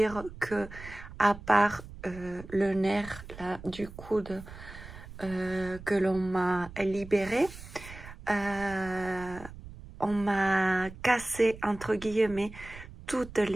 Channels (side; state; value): right; noise; rumble, 15 dB below the sound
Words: que à part le nerf là, du coude que l'on m'a libéré, on m'a cassé entre guillemets toutes